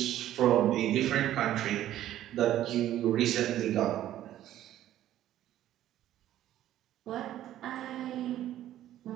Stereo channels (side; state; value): left; quieter; 12.7 dB